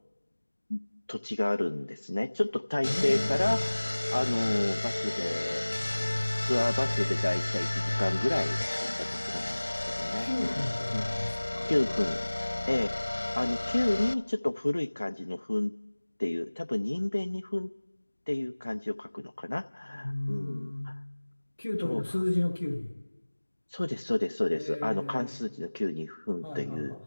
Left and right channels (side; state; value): both; inverted; correlation -1.00